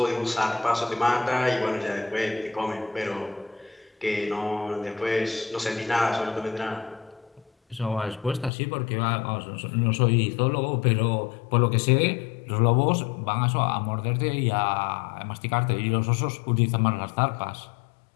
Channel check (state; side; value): drops out; right; at 8.5 s